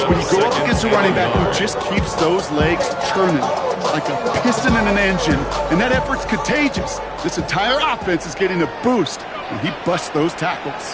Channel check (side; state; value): both; identical; correlation 1.00